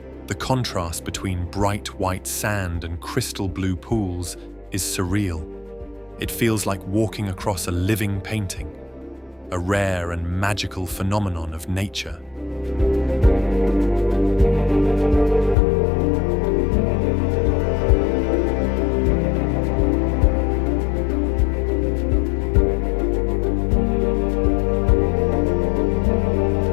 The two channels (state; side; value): drops out; right; at 15.6 s